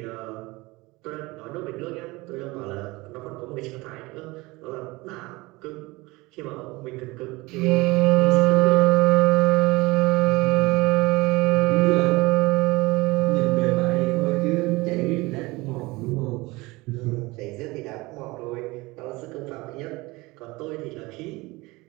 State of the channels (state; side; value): quieter; left; 22.3 dB